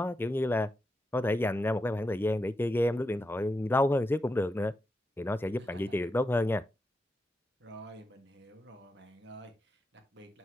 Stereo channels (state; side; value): normal; both; correlation 0.87